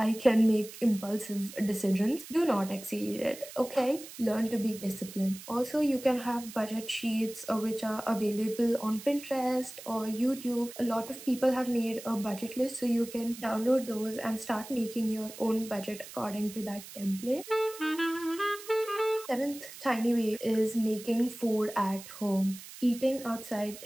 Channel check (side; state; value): right; noise; hiss, 15 dB below the sound